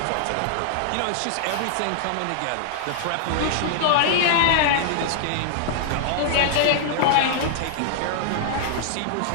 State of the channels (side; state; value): both; different; correlation -0.01